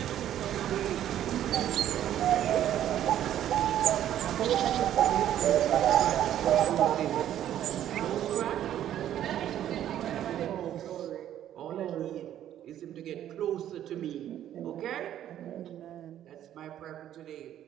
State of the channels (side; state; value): left; quieter; 11.4 dB